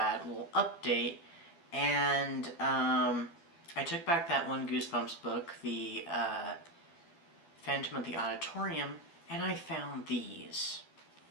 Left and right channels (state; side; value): late; right; 12 ms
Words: little update, and I took back that one Goosebumps book, the Phantom of the Auditorium, and I found these.